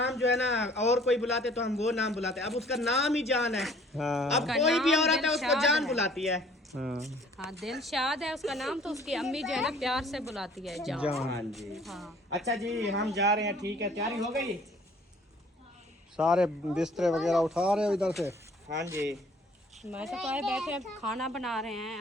जो है ना, और कोई बुलाते तो हम वो नाम बुलाते, अब उसका नाम ही जान है। हाँ अब कोई भी औरत है उसको जान बुलाती है। हाँ, हाँ, दिलशाद है उसका नाम, तो उसकी अम्मी जो है ना प्यार से बुलाती है जान। हाँ जी। हाँ, अच्छा जी, हम जा रहे हैं, ठीक है? तैयारी हो गई? सारे बिस्तरे वगैरह उठा रहे हो इधर से? हाँ जी। मैं तो आए बैठे हैं, खाना बना रहे हैं,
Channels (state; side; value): normal; both; correlation 0.55